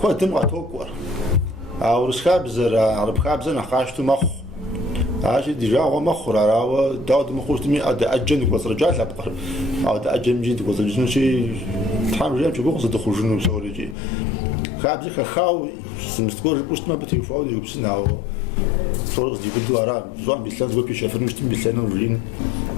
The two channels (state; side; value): drops out; right; at 14.0 s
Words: كوا تمغى توقع أو رسخابزة عرب خابزة نخاشتو مخ عاشي ديجا هو مخ راو داود مخوش تمي أجن قصر رجال لبقر أو أجن جيد قصر جنو شيء تحمل جام شو قصر دخول جنو سوري خابزة خاو سمستقول بوست ما بتيفاو يبسنا أو صورة دي بدو أرا زوان بيسلان زوان بيشافر نشتم بيسلان ورين